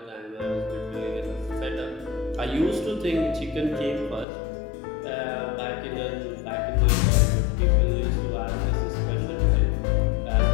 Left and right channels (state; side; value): drops out; right; at 4.2 s